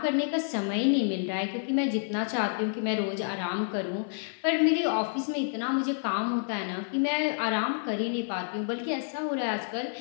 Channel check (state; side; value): silent; right; 58 dB below the other